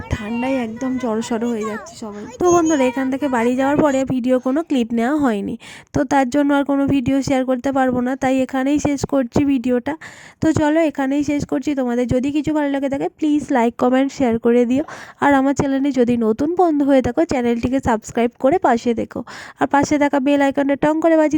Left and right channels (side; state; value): both; identical; correlation 1.00